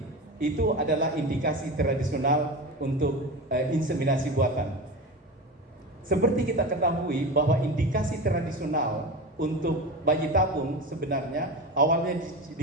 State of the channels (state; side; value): normal; both; correlation 0.26